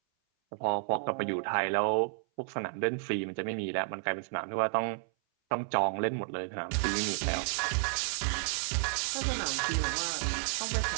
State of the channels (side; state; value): left; silent; 57 dB below the other